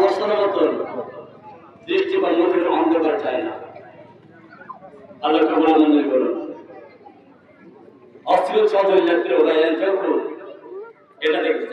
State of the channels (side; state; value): both; identical; correlation 1.00